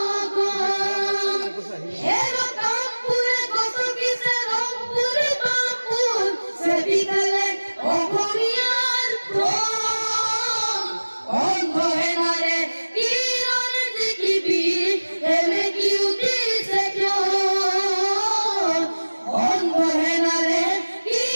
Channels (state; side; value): inverted; both; correlation -1.00